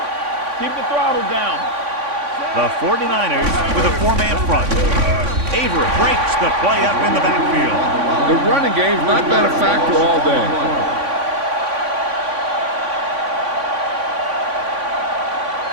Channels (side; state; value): left; late; 3.5 ms